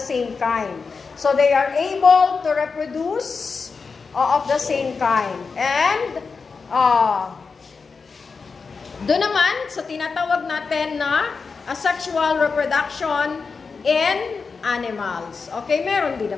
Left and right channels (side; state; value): right; quieter; 4.9 dB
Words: same kind. So, they are able to reproduce of the same kind. And, doon naman, sa tinatawag natin na asexual reproduction in animals. Okay, meron din